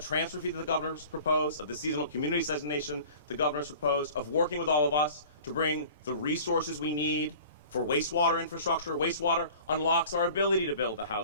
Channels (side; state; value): both; inverted; correlation -0.44